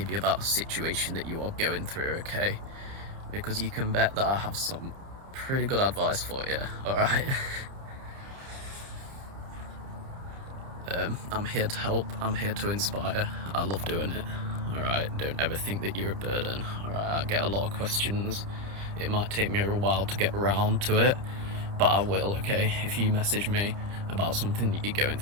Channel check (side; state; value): left; late; 30 ms